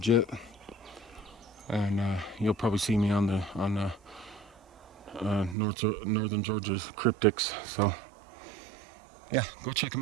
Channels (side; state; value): left; drops out; at 5.6 s